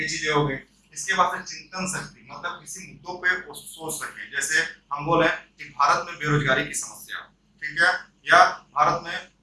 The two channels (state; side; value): identical; both; correlation 1.00